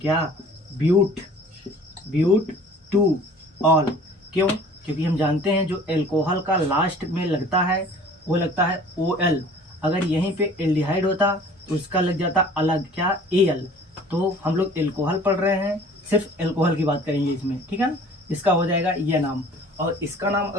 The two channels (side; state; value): both; normal; correlation 0.49